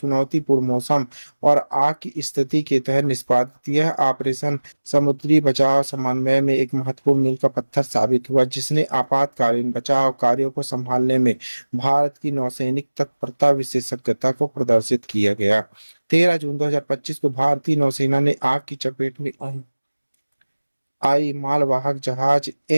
मौसम और आग की स्थिति के तहत निष्पादित यह ऑपरेशन समुद्री बचाव समन्वय में एक महत्वपूर्ण मील का पत्थर साबित हुआ, जिसने आपातकालीन बचाव कार्यों को संभालने में भारत की नौसैनिक तत्परता विशेषज्ञता को प्रदर्शित किया गया। 13 जून 2025 को भारतीय नौसेना ने आग की चपेट में आई मालवाहक जहाज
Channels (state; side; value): inverted; both; correlation -1.00